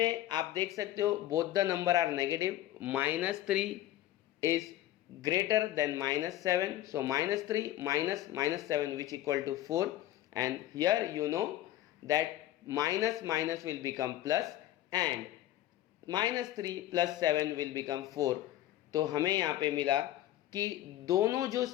आप देख सकते हो both the number are negative. -3 is greater than -7, so -3 minus -7 which equal to 4, and here you know that minus will become plus and -3 + 7 will become 4। तो हमें यहाँ पे मिला कि दोनों जो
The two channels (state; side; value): quieter; right; 13.9 dB